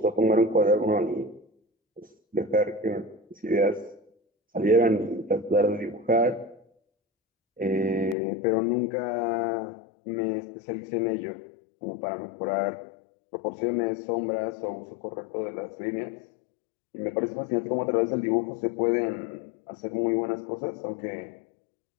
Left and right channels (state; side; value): drops out; right; at 8.2 s